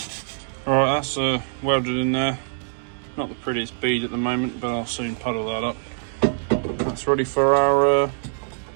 Alright, that's welded in there. Not the prettiest bead at the moment, but I'll soon puddle that up. That's ready for our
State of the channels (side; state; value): left; silent; digital silence